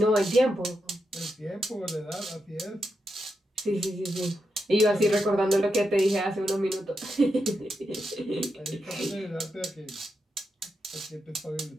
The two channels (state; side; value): normal; both; correlation 0.86